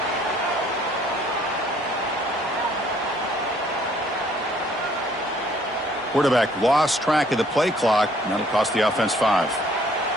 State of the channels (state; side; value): normal; both; correlation 0.61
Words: Quarterback lost track of the play clock, and that'll cost the offense 5.